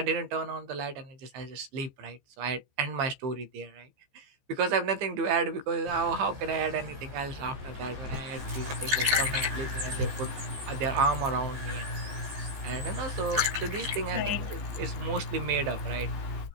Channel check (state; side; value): late; left; 15 ms